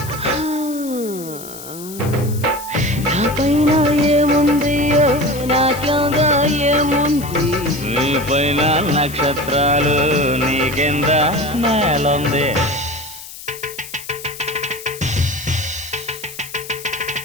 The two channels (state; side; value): noise; left; hiss, 14 dB below the sound